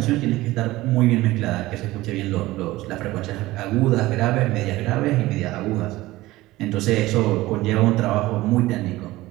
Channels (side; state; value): left; quieter; 18.1 dB